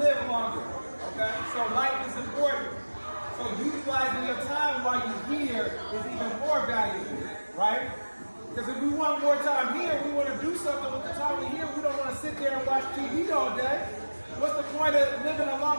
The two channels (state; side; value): inverted; both; correlation -1.00